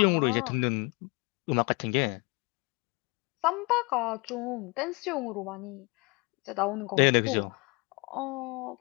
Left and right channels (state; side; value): quieter; right; 28.4 dB